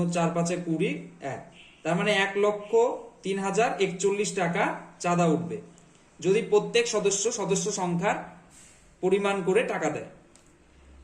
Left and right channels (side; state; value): both; identical; correlation 1.00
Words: 4 5 20, 1, তার মানে 1,03,041 টাকা চাঁদা উঠবে যদি প্রত্যেক সদস্য সংখ্যার পরিমাণ করে টাকা দেয়।